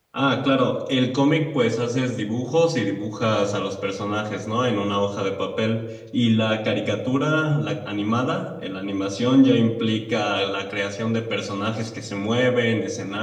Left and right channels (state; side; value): identical; both; correlation 1.00